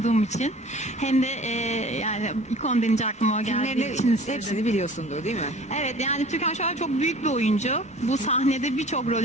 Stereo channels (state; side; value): normal; both; correlation 0.46